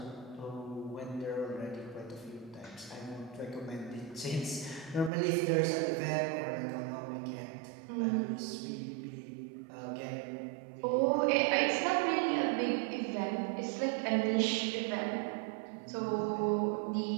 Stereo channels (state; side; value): drops out; left; at 5.1 s